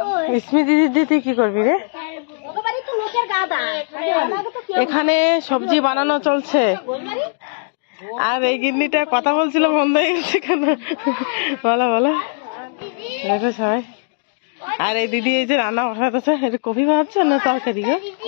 স্মৃতি দিদি তুই কি করবি রে? এখানে সবজি বানানো চলছে, আর এই গিন্নিটা কথা বলছিল বন্ধ হয়ে গেছে কেন? বলো বলো, দেখো সবাই। আর এই দিদি এই যে রান্না বসাতেছে, এটা কফি ভাবছে না তরকারি গো?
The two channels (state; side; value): silent; right; digital silence